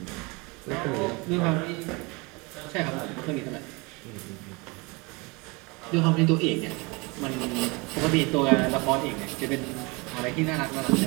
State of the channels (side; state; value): left; quieter; 27.1 dB